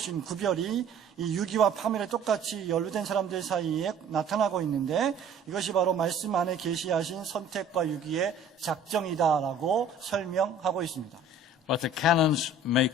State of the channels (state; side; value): quieter; left; 3.2 dB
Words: 구별이 이 유기와 파멸에 똑같이 연루된 사람들 사이에 나타나고 있는데 이것이 바로 말씀 안에 계시하신 선택과 유기의 작정이다라고 설명하고 있습니다. But the canons